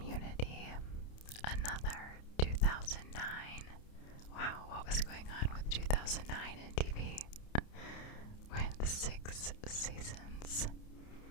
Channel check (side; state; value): right; late; 29 ms